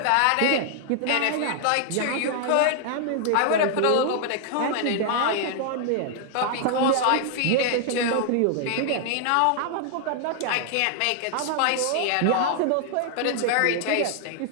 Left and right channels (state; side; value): different; both; correlation 0.00